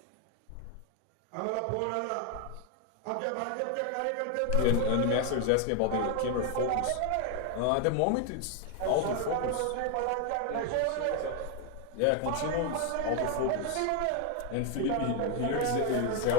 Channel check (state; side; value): different; both; correlation 0.01